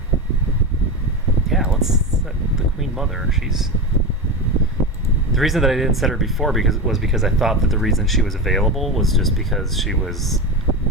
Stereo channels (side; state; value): both; normal; correlation 0.21